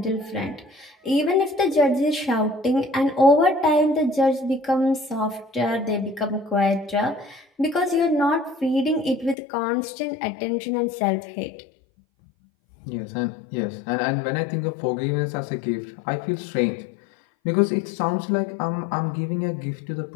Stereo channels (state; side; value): drops out; right; at 9.3 s